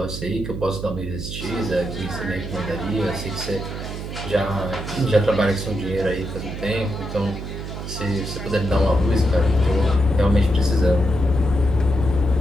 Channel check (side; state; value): right; noise; hum, 7 dB below the sound